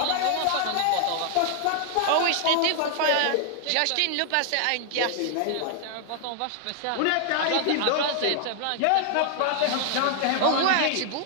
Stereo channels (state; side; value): different; both; correlation 0.00